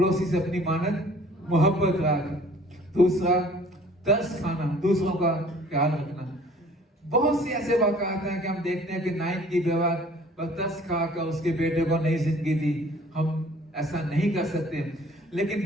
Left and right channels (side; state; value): both; normal; correlation 0.52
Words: سے اپنی مانت محبت رکھ. دوسرا ترس کھانا، دوسروں کا خیال رکھنا. بہت سے ایسے واقعات ہیں کہ ہم دیکھتے ہیں کہ نائن کی بیوہ پر ترس کھا کر اس کے بیٹے کو نئی زندگی دی. ہم ایسا نہیں کر سکتے. لیکن